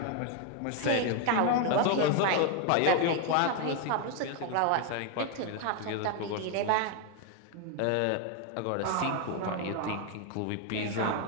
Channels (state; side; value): different; both; correlation 0.01